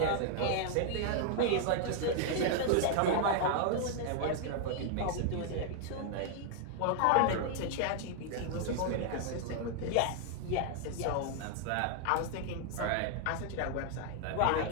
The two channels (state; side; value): different; both; correlation 0.00